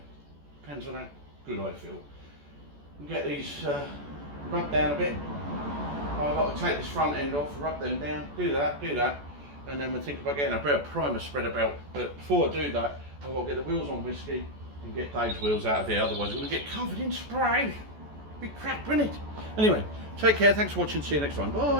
Depends on how good I feel. We'll get these rubbed down a bit. I've got to take this front end off, rub them down, do that, and then we'll think about getting a bit of primer spread about. But before I do that, I've got to get the wheels on whiskey and get Dave's wheels out of here, otherwise we're going to get covered in spray. Big crap, isn't it? Anyway, take care, thanks for watching, see you next time,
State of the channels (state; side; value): late; left; 14 ms